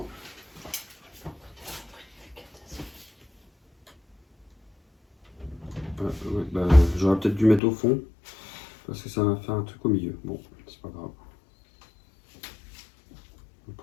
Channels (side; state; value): right; drops out; at 7.6 s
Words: Bah, j'aurais peut-être dû mettre au fond. Parce que ça va faire un truc au milieu. Bon, c'est pas grave. Le